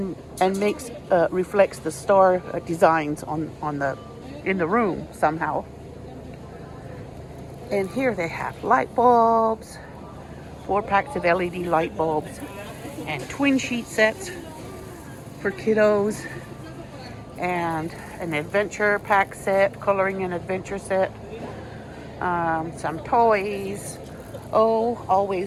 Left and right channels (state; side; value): identical; both; correlation 1.00